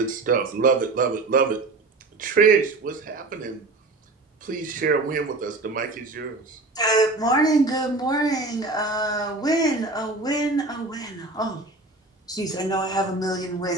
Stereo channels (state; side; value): quieter; left; 3.2 dB